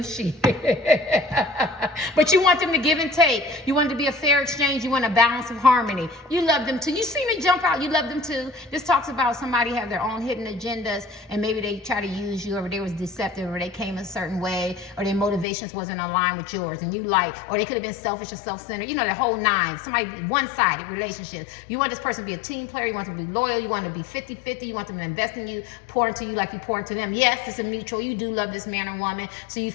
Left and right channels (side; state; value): right; drops out; at 15.5 s